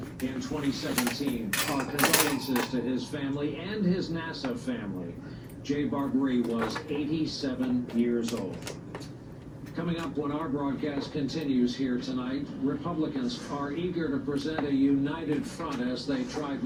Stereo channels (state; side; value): identical; both; correlation 1.00